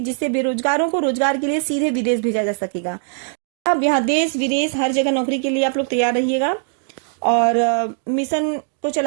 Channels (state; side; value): silent; left; digital silence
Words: जिससे बेरोजगारों को रोजगार के लिए सीधे विदेश भेजा जा सकेगा। अब यहाँ देश विदेश हर जगह नौकरी के लिए आप लोग तैयार रहिएगा। और मिशन को